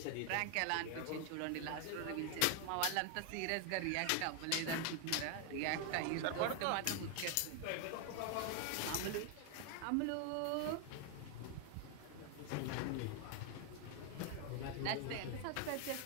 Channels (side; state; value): both; different; correlation 0.00